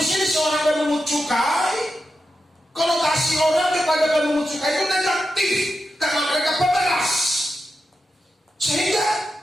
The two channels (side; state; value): both; normal; correlation 0.89